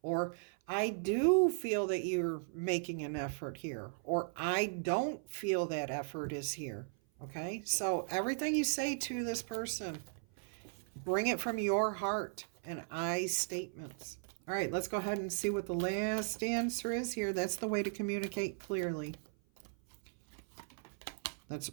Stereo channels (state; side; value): silent; left; 53 dB below the other